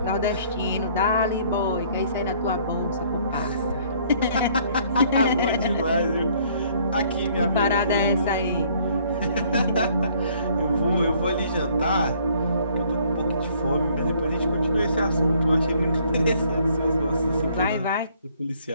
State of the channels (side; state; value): both; inverted; correlation -0.62